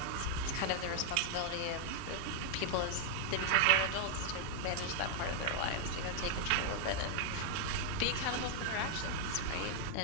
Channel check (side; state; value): both; different; correlation 0.00